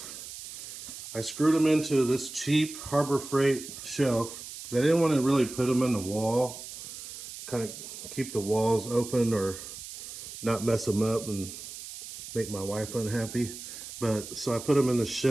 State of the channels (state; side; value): noise; right; hiss, 12 dB below the sound